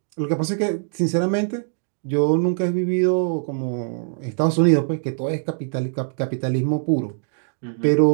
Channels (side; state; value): left; silent; digital silence